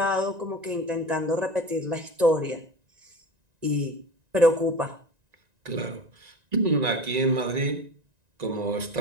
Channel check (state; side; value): late; left; 1.9 ms